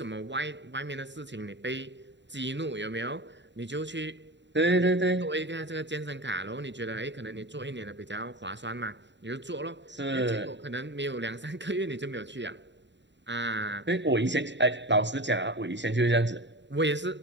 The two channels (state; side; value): late; left; 0.52 ms